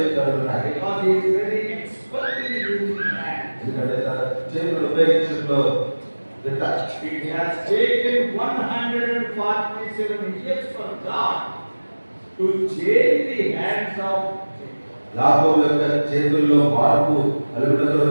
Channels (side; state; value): both; inverted; correlation -1.00